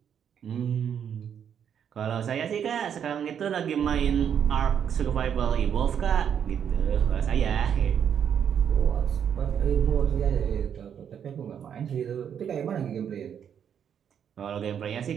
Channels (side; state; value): left; quieter; 8.3 dB